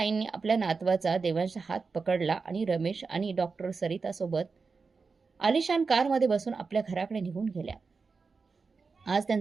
आपल्या नातवाचा देवांशचा हात पकडला आणि रमेश आणि डॉक्टर सरितासोबत आलिशान कारमध्ये बसून आपल्या घराकडे निघून गेल्या. आज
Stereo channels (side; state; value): left; quieter; 4.7 dB